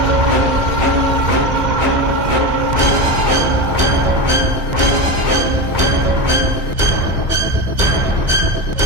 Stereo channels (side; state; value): left; late; 2.1 ms